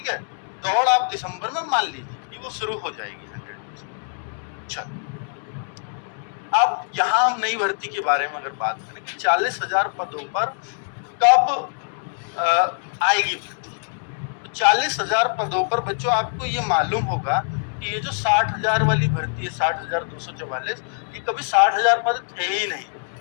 है। दौड़ आप दिसंबर में मान लीजिए कि वो शुरू हो जाएगी 100%। चलो, अब यहाँ हम नई भर्ती के बारे में अगर बात करें कि 40,000 पदों पर कब आएगी भर्ती, तो 40,000 पदों पर बच्चों आपको ये मालूम होगा कि ये जो 60,000 वाली भर्ती है 60,244, ये कभी 60,000 पद थे ही नहीं।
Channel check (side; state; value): right; silent; digital silence